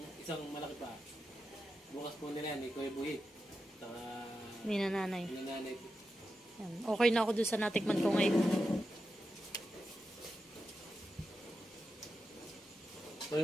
isang malaki pa. Bukas po nila yan, Kuya Buhit. Saka Ni nanay. nanay. Yan. Okay na ako dun sa natikman ko ngayon.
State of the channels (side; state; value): both; normal; correlation 0.89